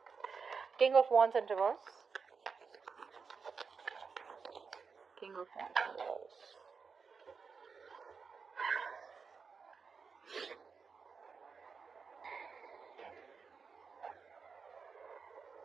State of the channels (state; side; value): quieter; left; 5.4 dB